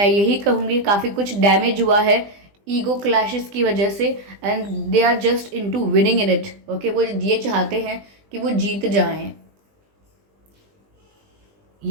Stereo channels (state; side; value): late; left; 20 ms